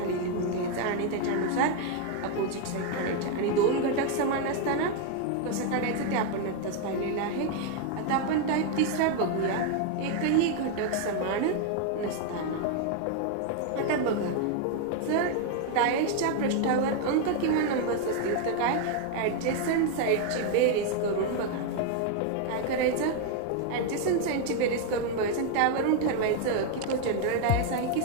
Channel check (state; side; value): different; both; correlation 0.00